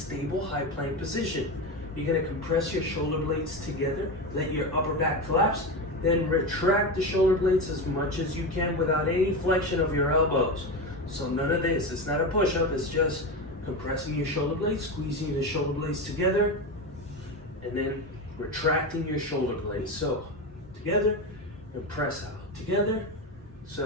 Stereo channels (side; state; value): both; normal; correlation 0.19